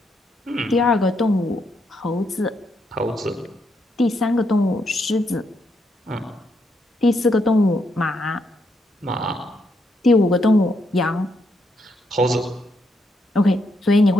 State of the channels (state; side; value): normal; both; correlation 0.78